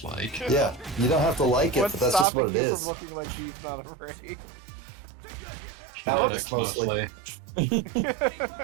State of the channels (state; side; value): drops out; left; at 2.2 s